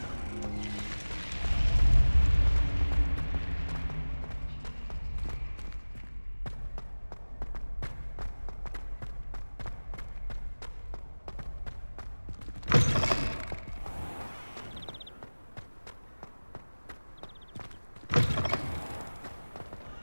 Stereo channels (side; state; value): both; inverted; correlation -1.00